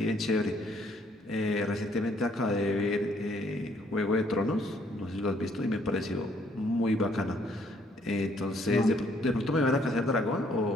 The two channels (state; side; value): normal; both; correlation 0.66